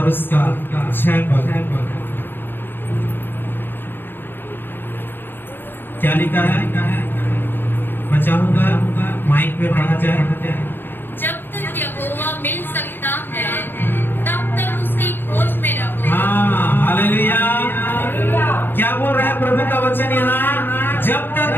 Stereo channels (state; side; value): late; right; 0.096 ms